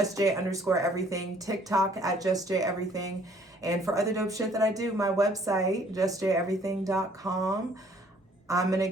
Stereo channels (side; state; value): both; normal; correlation 0.60